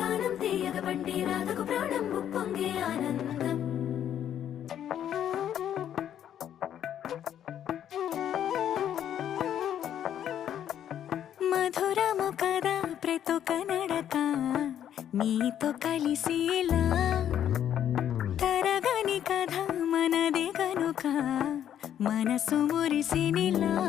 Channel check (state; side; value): quieter; right; 10.2 dB